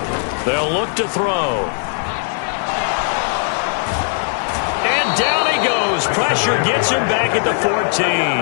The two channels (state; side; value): silent; right; 67 dB below the other